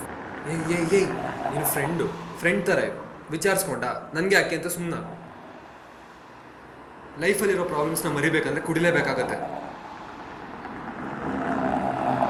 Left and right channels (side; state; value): both; identical; correlation 1.00